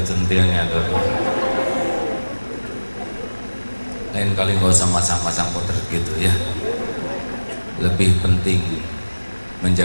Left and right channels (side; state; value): both; inverted; correlation -1.00